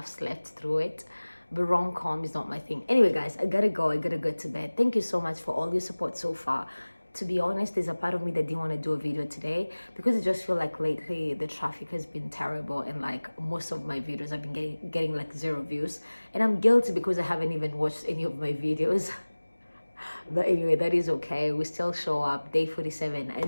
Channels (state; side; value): inverted; both; correlation -1.00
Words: slept through it. But rom-com is not my thing. Anyway, guys, I gotta go to bed. Thank you so much for all your support so far. To be honest, there's a part of me that didn't want to do a video today because I just feel like lately the traffic has been terrible, and like most of my videos have been getting like 0 views, and I'm guilty because I haven't even watched any of my videos. But anyway, that is okay. We still show up. Day 47